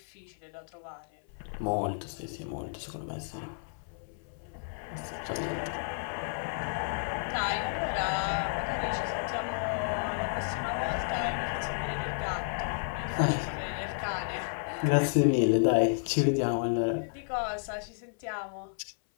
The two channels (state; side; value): silent; right; 57 dB below the other